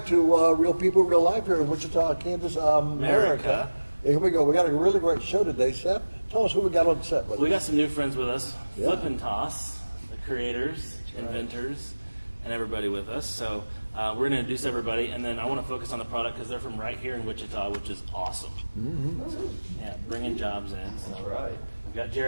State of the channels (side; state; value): both; inverted; correlation -1.00